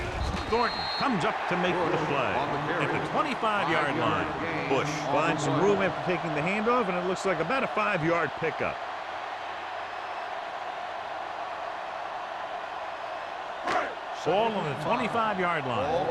Thornton comes up to make the play at the 25-yard line. Bush finds some room after taking the handoff, and it looks like about a 5-yard pickup. Ball on the 25-yard line. Ball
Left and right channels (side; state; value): both; identical; correlation 1.00